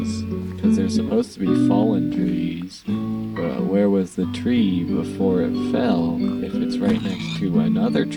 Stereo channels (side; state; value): both; identical; correlation 1.00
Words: because they're supposed to be fallen trees. But where was the tree before it fell if it's right next to another